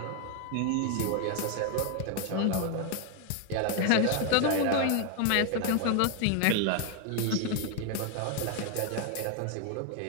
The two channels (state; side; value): different; both; correlation 0.00